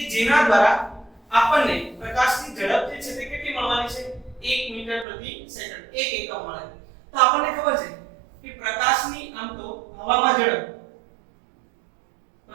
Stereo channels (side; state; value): left; drops out; at 5.1 s